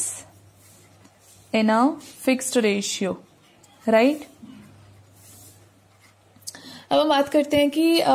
in a fixed ratio, right? अब हम बात करते हैं कि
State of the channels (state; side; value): identical; both; correlation 1.00